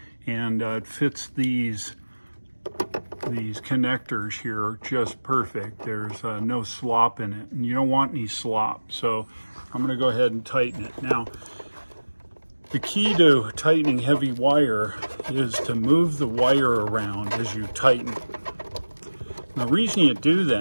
and it fits these connectors here just perfect. There's no slop in it, and you don't want any slop, so I'm going to go ahead and tighten it. Now, the key to tightening heavy wire is to move the wire around as you tighten it. The reason you do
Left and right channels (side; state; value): both; inverted; correlation -1.00